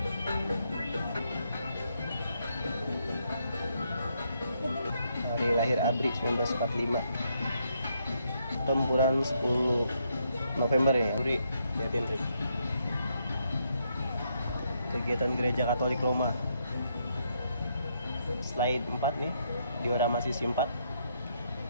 Hari lahir ABRI 1945. Tempuran 10 November ya. ABRI, lihatin Trik. Kegiatan Gereja Katolik Roma. Slide 4 nih, diorama sisi 4.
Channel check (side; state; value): both; inverted; correlation -0.76